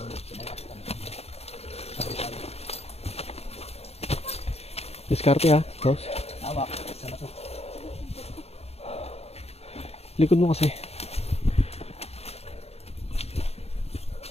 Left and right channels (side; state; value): right; late; 0.30 ms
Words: Diskarte ha, boss. Hawak. Sana to. Likod mo kasi.